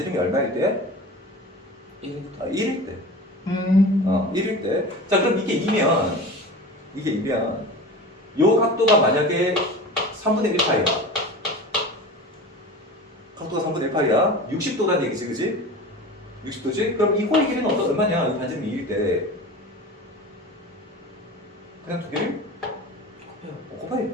얼마일 때? 1일 때. 1일 때. 자, 그럼 이게 2면 요 각도가 만약에 3분의 1파이야. 각도가 3분의 1파이야. 60도란 얘기지, 그지? 60도지? 그럼 이 호의 길이는 얼마냐? 이 반지름이 2일 때. 그냥 두 개를? 곱해.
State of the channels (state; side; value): normal; both; correlation 0.34